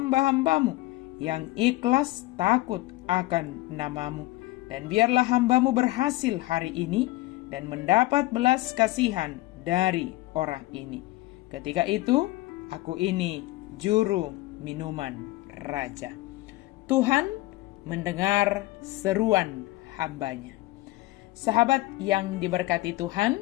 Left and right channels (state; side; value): quieter; right; 19.0 dB